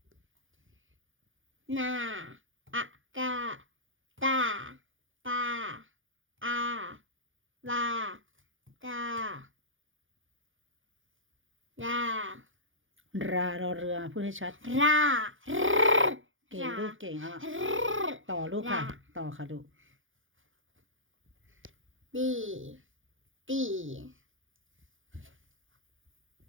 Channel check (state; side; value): late; left; 0.58 ms